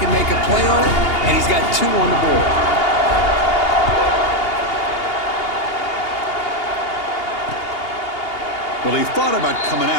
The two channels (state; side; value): late; right; 2.8 ms